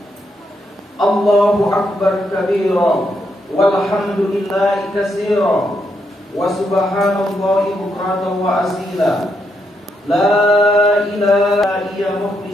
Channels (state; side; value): normal; both; correlation 0.79